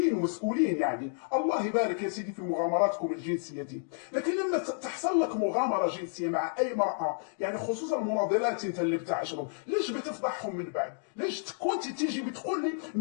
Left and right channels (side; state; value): right; silent; digital silence